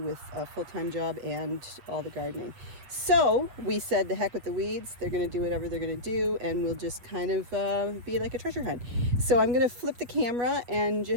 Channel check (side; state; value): left; late; 8.3 ms